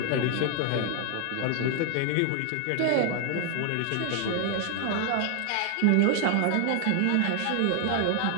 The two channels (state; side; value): different; both; correlation 0.00